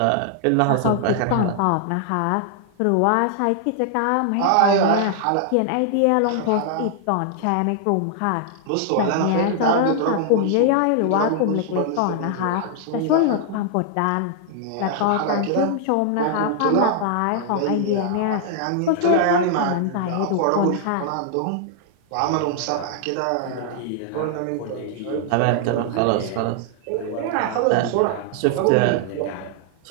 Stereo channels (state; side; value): different; both; correlation 0.00